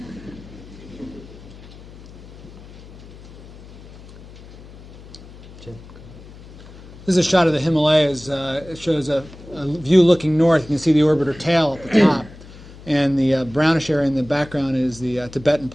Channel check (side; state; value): left; noise; hum, 18 dB below the sound